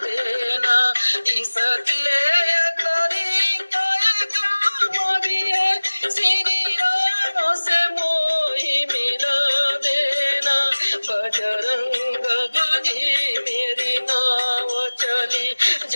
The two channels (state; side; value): inverted; both; correlation -1.00